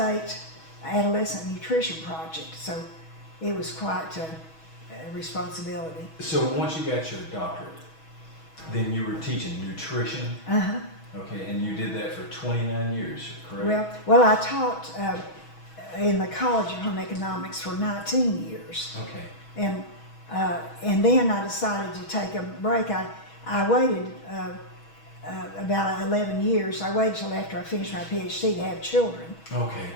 adolescent nutrition project, so it was quite a responsibility. So once you got your doctorate, then you were teaching nutrition? Okay, and you did that for 29 years, correct? Well, I taught in the College of Home Economics for 19 years. Okay. And then I decided to take a break. I waited about 11 years. I waited till after I finished my PhD to have children. Okay.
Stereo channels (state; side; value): late; right; 6.2 ms